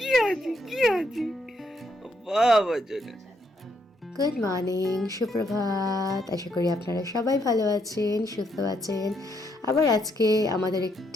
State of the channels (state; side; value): normal; both; correlation 0.75